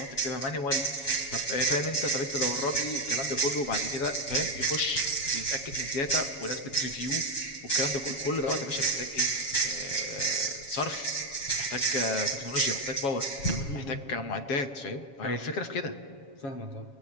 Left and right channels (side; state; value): right; late; 7.2 ms